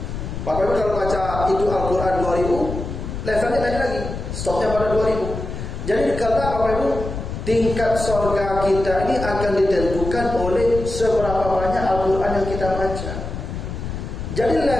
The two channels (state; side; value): noise; left; rumble, 6 dB below the sound